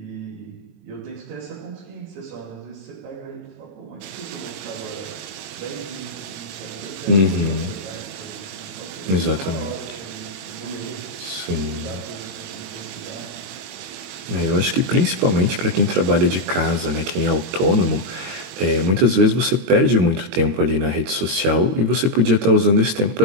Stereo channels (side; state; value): left; late; 22 ms